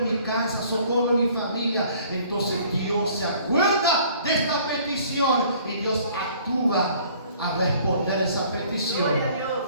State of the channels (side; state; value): both; inverted; correlation -0.55